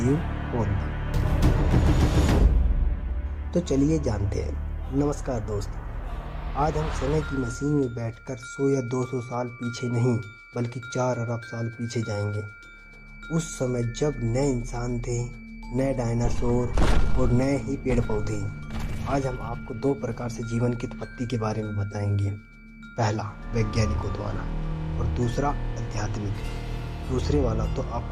कौन था? तो चलिए जानते हैं। नमस्कार दोस्त, आज हम समय की मशीन में बैठकर 100 या 200 साल पीछे नहीं बल्कि 4 अरब साल पीछे जाएंगे। उस समय जब नए इंसान थे, नए डायनासोर और नए ही पेड़ पौधे। आज हम आपको 2 प्रकार से जीवन की उत्पत्ति के बारे में बताएंगे। पहला वैज्ञानिकों द्वारा और दूसरा आध्यात्मिक। दूसरे वाला तो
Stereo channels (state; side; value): identical; both; correlation 1.00